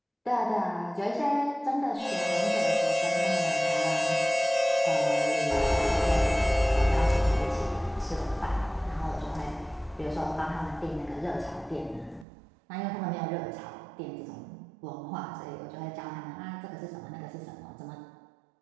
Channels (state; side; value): drops out; left; at 12.2 s